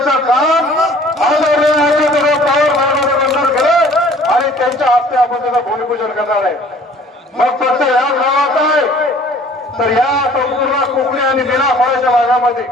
काम आणि त्यांच्या हस्ते आपण त्याचं भूमिपूजन करणार आहे। मग फक्त या गावात आहे तर या संपूर्ण कोकणी आणि मिराखोऱ्याच्या भागामध्ये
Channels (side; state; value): both; normal; correlation 0.52